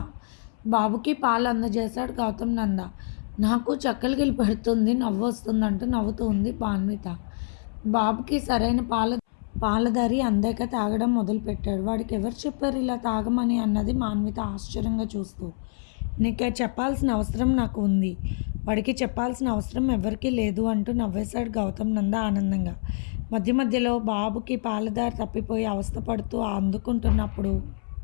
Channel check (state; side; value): silent; right; 61 dB below the other